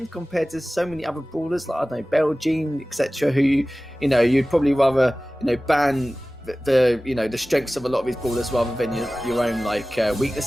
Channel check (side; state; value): both; normal; correlation 0.97